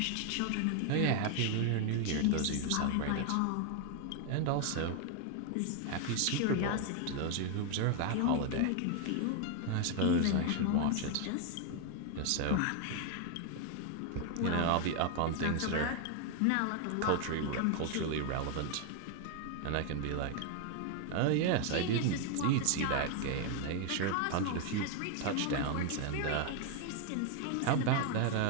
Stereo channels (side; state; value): both; different; correlation 0.01